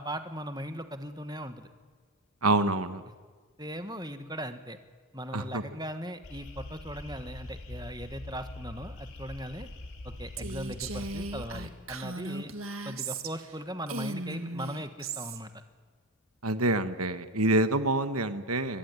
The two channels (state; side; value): normal; both; correlation 0.20